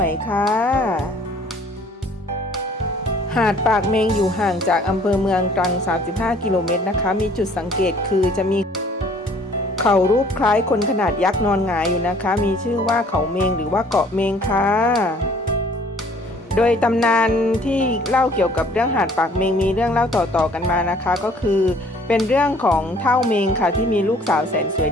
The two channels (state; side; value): normal; both; correlation 0.56